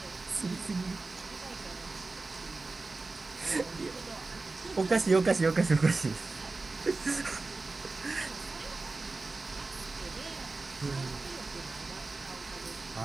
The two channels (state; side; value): quieter; left; 3.6 dB